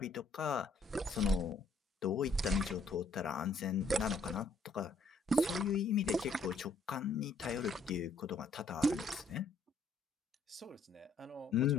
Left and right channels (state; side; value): quieter; right; 3.4 dB